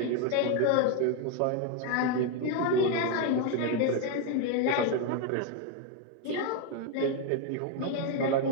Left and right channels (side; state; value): both; different; correlation 0.01